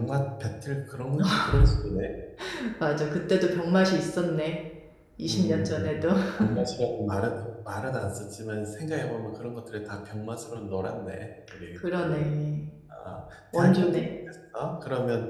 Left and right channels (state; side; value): identical; both; correlation 1.00